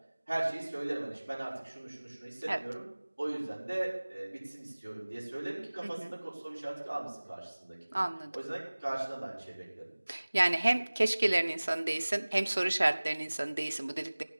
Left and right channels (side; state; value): both; inverted; correlation -1.00